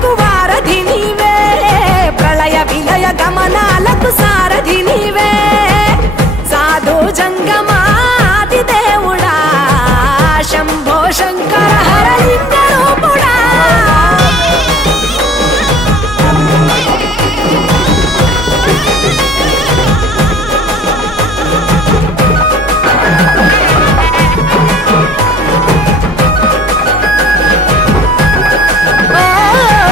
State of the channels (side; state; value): both; normal; correlation 0.57